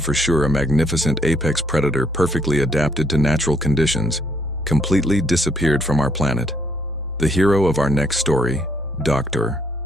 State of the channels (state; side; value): normal; both; correlation 0.69